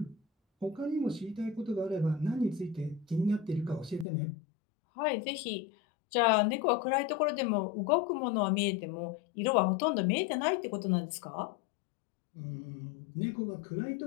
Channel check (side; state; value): right; drops out; at 4.0 s